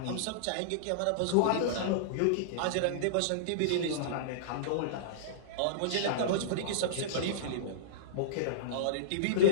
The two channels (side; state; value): both; different; correlation -0.03